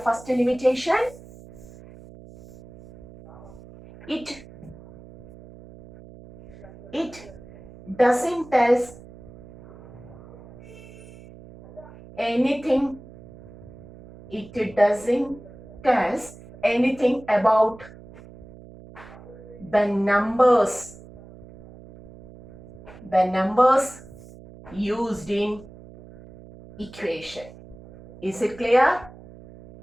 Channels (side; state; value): right; noise; hum, 19 dB below the sound